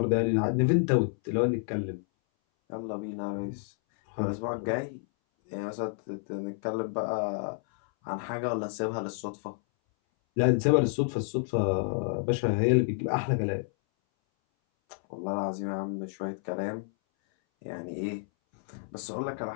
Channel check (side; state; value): right; silent; 58 dB below the other